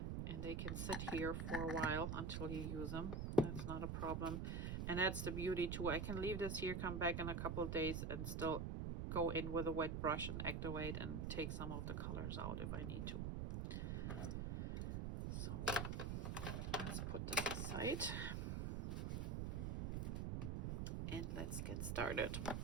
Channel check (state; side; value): noise; right; rumble, 1 dB below the sound